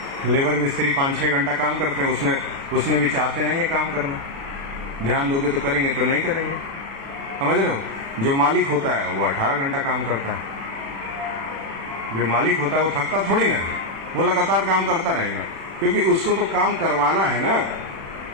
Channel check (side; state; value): left; late; 36 ms